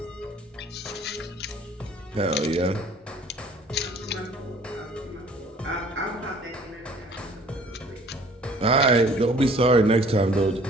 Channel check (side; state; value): both; normal; correlation 0.53